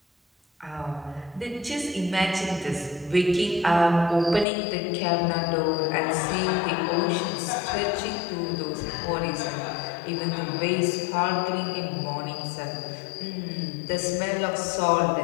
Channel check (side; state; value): right; drops out; at 4.5 s